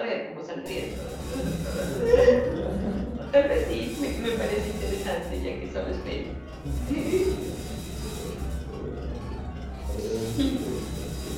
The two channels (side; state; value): both; identical; correlation 1.00